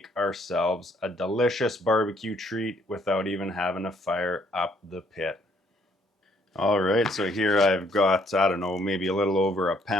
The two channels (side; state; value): both; normal; correlation 0.66